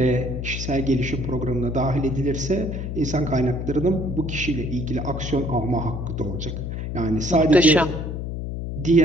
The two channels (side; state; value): left; noise; hum, 5 dB below the sound